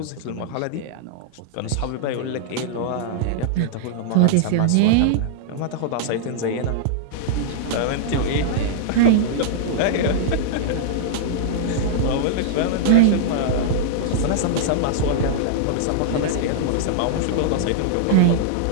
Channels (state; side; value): different; both; correlation -0.01